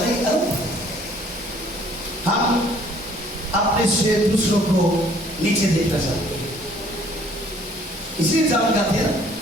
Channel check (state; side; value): normal; both; correlation 0.58